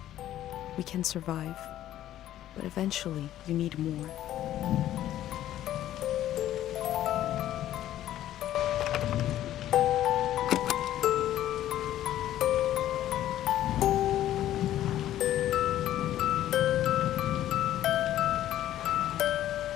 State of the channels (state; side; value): quieter; right; 12.7 dB